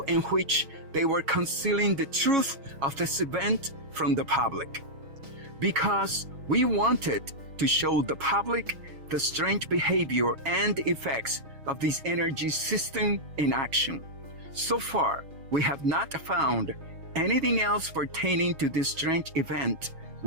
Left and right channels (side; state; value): left; late; 6.3 ms